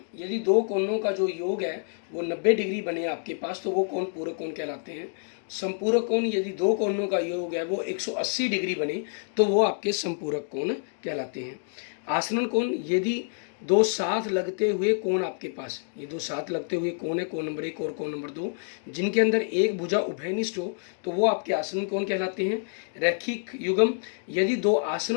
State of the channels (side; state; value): right; silent; digital silence